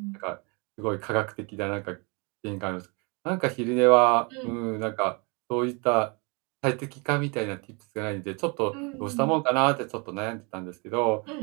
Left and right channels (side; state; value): left; quieter; 31.3 dB